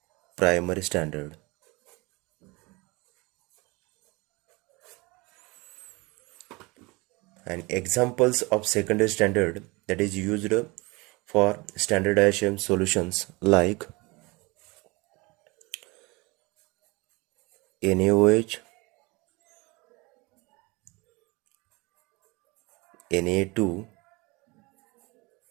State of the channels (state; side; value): quieter; left; 25.2 dB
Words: primary standard. And examples of secondary standard that is used for standardization solutions like NaOH, Na2,